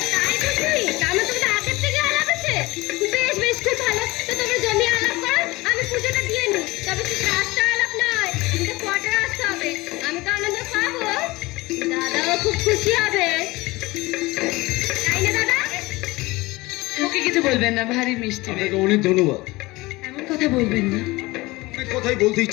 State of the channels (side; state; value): right; quieter; 21.3 dB